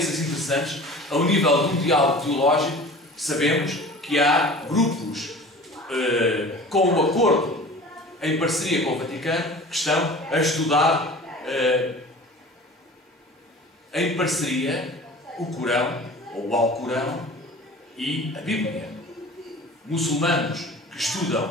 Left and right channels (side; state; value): both; normal; correlation 0.41